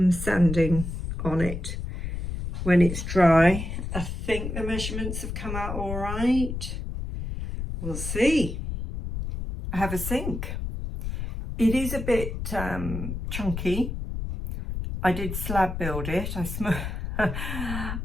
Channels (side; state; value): left; noise; rumble, 5 dB below the sound